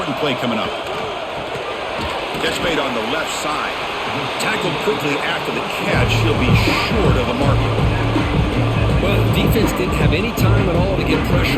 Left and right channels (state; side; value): identical; both; correlation 1.00